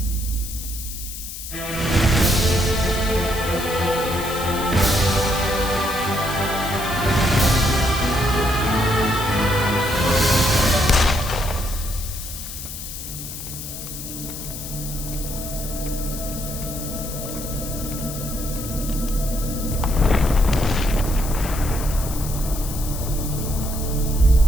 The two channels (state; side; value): noise; left; hiss, 9 dB below the sound